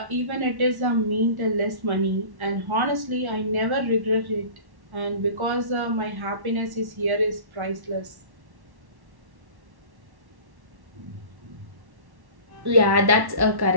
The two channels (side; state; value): left; late; 1.1 ms